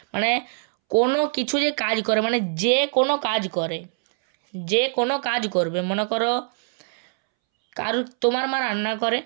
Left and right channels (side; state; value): left; silent; 63 dB below the other